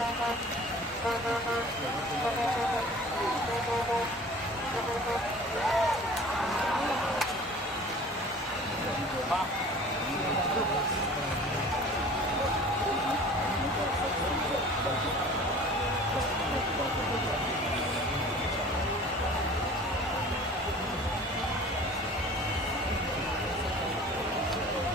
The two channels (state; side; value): normal; both; correlation 0.44